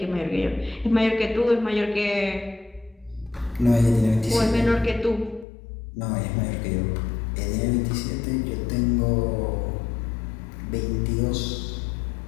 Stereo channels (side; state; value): right; drops out; at 5.5 s